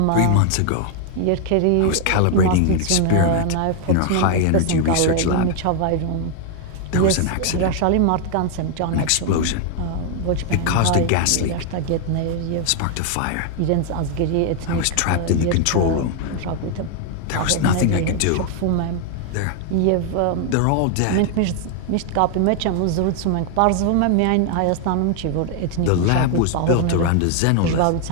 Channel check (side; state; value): both; different; correlation 0.00